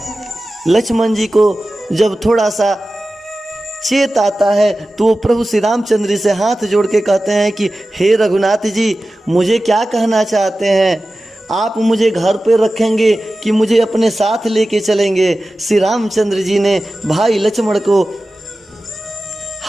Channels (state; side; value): normal; both; correlation 0.95